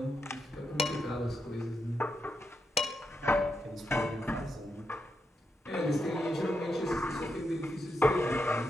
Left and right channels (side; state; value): both; normal; correlation 0.84